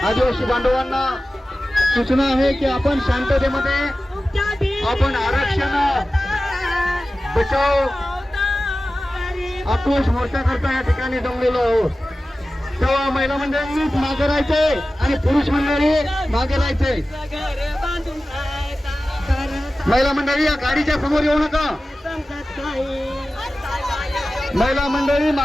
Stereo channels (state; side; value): normal; both; correlation 0.95